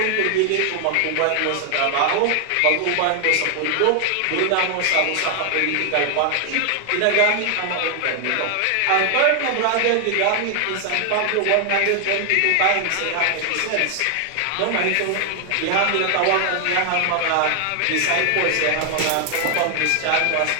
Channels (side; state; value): both; different; correlation 0.00